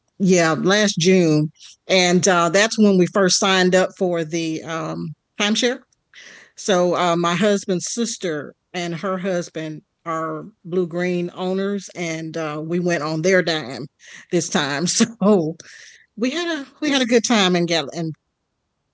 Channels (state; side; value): identical; both; correlation 1.00